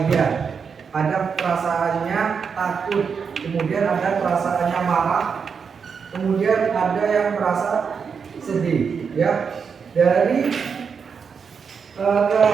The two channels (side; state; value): left; quieter; 6.1 dB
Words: ada perasaannya takut, kemudian ada perasaannya marah, kemudian ada yang merasa sedih ya. Dari